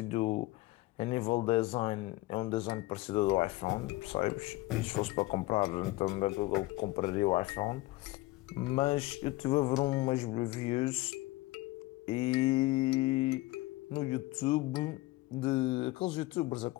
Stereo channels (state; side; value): quieter; right; 19.6 dB